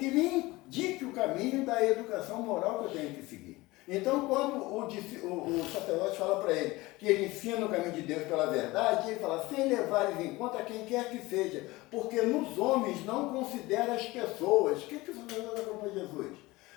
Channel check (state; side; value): quieter; right; 20.7 dB